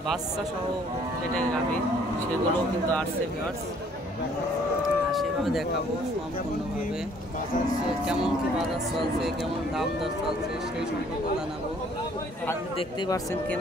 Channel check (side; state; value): both; normal; correlation 0.60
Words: বাচ্চা সহ যেটা গাভী সেগুলোও কিন্তু আসছে ভিউয়ার্স। সেভাবে দেখাবো সম্পূর্ণভাবে কেমন কি বাজার চলছে, কেমন দাম দর চলছে সেই সম্পর্কে জানাবো। আজকে দেখতেই পাচ্ছেন